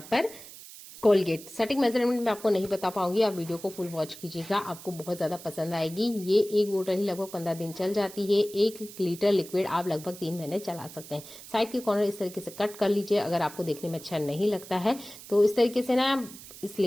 पर कोलगेट। सटीक मेजरमेंट में आपको नहीं बता पाऊंगी, आप वीडियो को फुल वॉच कीजिएगा, आपको बहुत ज्यादा पसंद आएगी। ये एक बोतल ही लगभग 15 दिन चल जाती है। 1 लीटर लिक्विड आप लगभग 3 महीने चला सकते हैं। साइड के कॉर्नर इस तरीके से कट कर लीजिए। अगर आपको देखने में अच्छा नहीं लगता है तो इस तरीके से ना इस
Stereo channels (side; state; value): right; noise; hiss, 16 dB below the sound